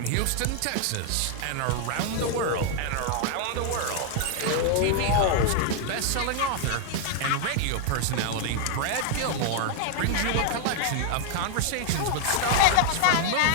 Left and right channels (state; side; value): different; both; correlation 0.00